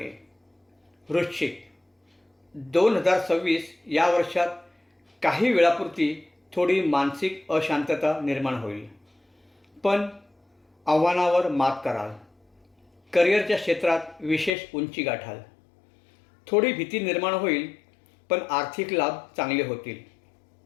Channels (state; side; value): drops out; right; at 14.5 s